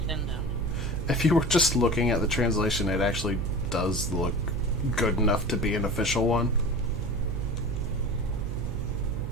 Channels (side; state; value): right; noise; hum, 3 dB below the sound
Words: if you were just looking at the translation, it actually does look good enough to be an official one.